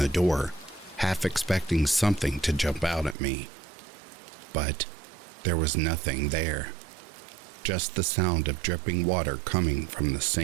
door, half expecting something to jump out at me. But there was nothing there. Just the sound of dripping water coming from the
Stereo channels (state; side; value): drops out; left; at 3.2 s